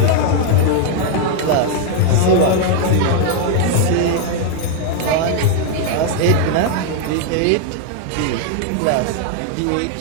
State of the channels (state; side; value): different; both; correlation 0.00